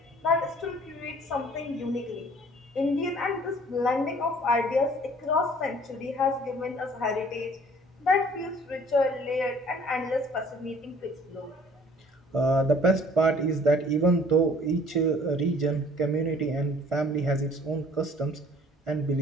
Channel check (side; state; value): both; normal; correlation 0.54